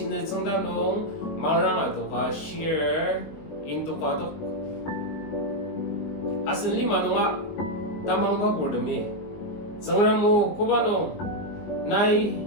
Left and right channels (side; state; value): right; late; 19 ms